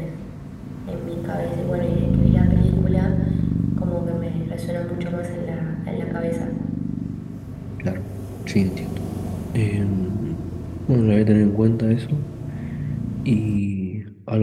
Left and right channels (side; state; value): both; identical; correlation 1.00